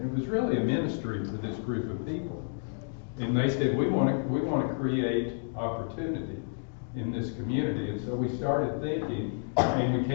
it was really a ministry for this group of people. And they said, we want to create opportunity in this community. And so we started thinking, and we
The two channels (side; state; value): right; silent; digital silence